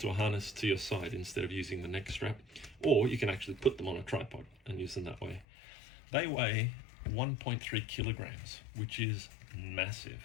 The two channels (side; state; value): right; drops out; at 5.5 s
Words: a harness to your side instead of using the neck strap, or you can actually put them on a tripod and use them that way. They weigh 1.3 kilograms, which is massive.